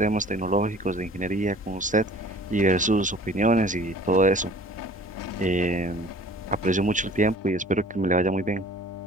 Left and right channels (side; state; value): both; normal; correlation 0.48